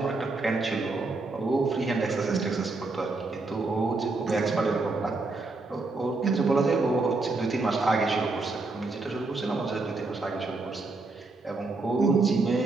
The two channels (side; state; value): left; quieter; 3.5 dB